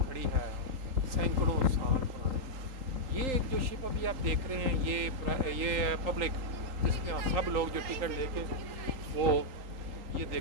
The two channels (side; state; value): left; late; 3.8 ms